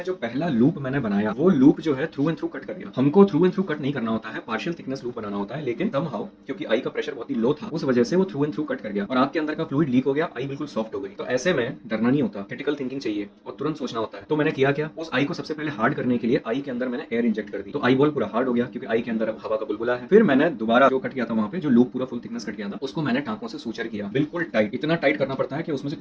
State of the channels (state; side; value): identical; both; correlation 1.00